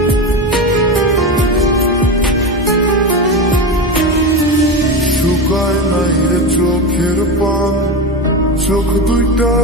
শুকায় নাই রে চোখের পান চোখ দুইটা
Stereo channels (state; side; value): normal; both; correlation 0.20